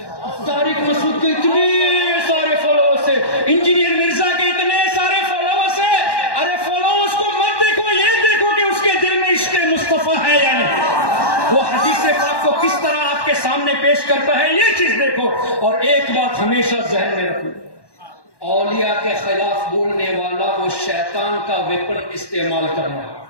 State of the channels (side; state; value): right; late; 1.1 ms